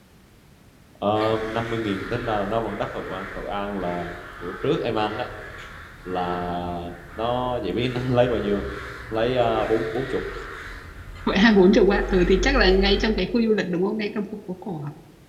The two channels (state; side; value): identical; both; correlation 1.00